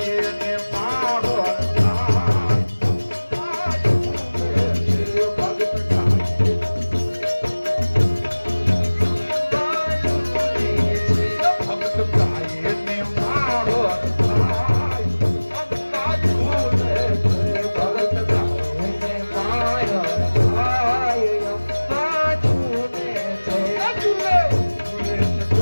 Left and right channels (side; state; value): both; inverted; correlation -1.00